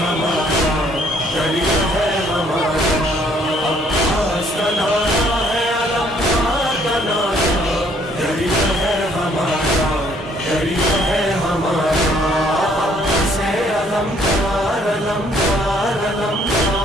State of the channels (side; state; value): both; normal; correlation 0.64